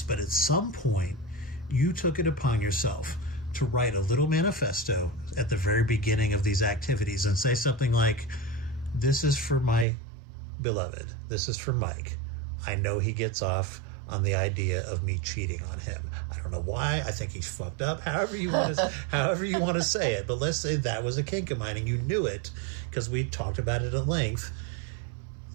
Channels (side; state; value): left; drops out; at 9.9 s